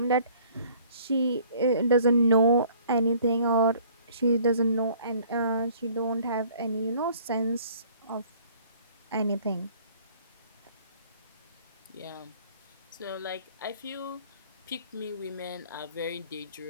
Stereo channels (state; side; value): inverted; both; correlation -0.55